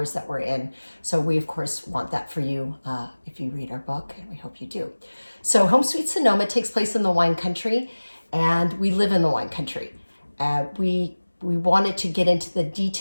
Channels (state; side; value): inverted; both; correlation -1.00